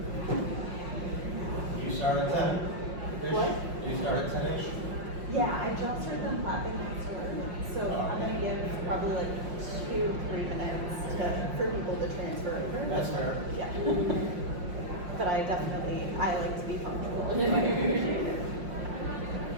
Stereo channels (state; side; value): late; left; 5.6 ms